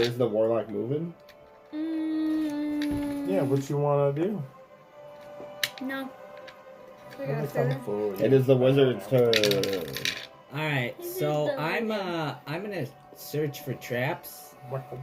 the warlock moving? Yeah, what you want to do? No. It is the wizard's turn. Alright, so I'm gonna search for traps.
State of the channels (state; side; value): identical; both; correlation 1.00